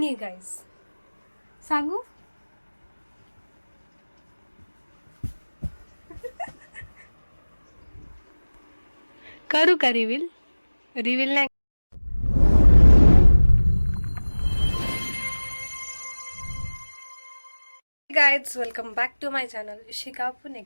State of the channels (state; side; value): inverted; both; correlation -1.00